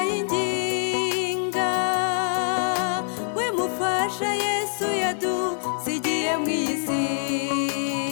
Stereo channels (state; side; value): silent; right; digital silence